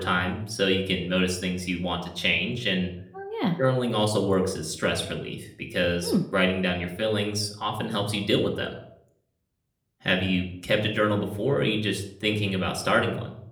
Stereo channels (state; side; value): identical; both; correlation 1.00